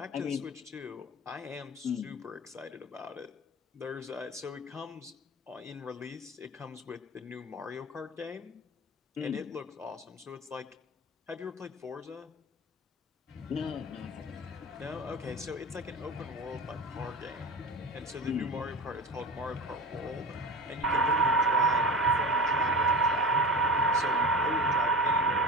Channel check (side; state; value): both; normal; correlation 0.30